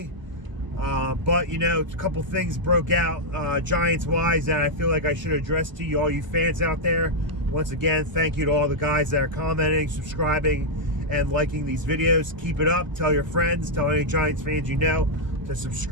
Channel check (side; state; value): left; late; 1.1 ms